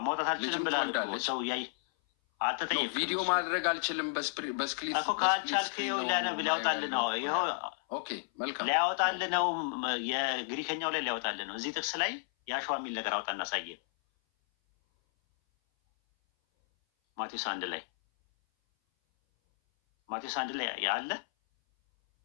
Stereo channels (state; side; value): silent; right; 56 dB below the other